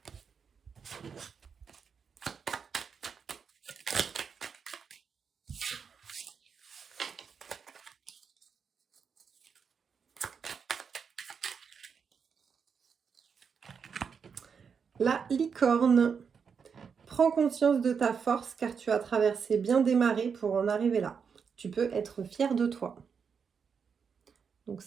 La licorne. Prends conscience de ta force car tu as traversé bien des marées pour en arriver là. Tu peux être fier de toi. Donc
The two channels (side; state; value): left; quieter; 6.3 dB